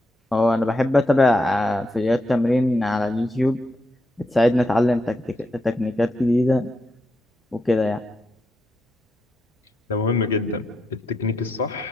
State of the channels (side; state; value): both; normal; correlation 0.83